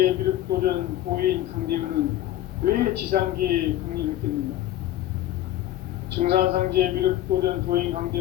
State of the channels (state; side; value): quieter; right; 13.5 dB